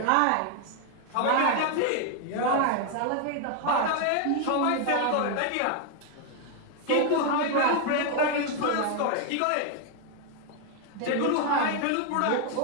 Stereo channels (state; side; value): different; both; correlation 0.00